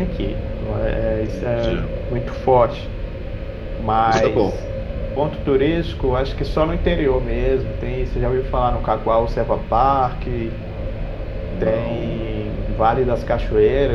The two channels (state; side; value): identical; both; correlation 1.00